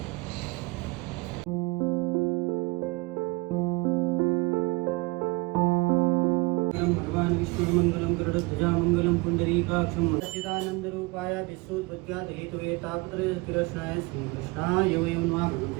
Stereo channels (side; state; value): left; quieter; 24.5 dB